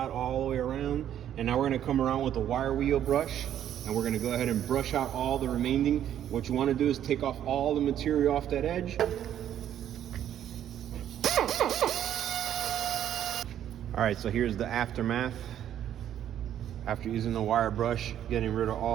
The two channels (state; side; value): quieter; left; 10.6 dB